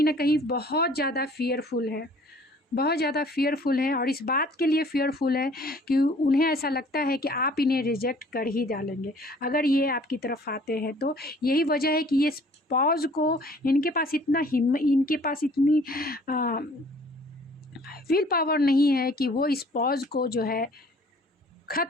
ना कहीं बहुत ज़्यादा फियरफुल है, बहुत ज़्यादा फियरफुल हैं। और इस बात के लिए फियरफुल है कि उन्हें ऐसा लगता है कि आप इन्हें रिजेक्ट कर ही डालेंगे अगर ये आपकी तरफ आते हैं। तो यही वजह है कि ये पॉज को, इनके पास इतनी विल पावर नहीं है कि वो इस पॉज को जो है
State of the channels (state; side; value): normal; both; correlation 0.54